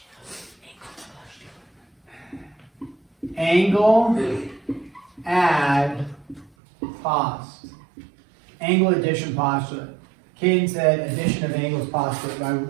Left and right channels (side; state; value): left; drops out; at 6.5 s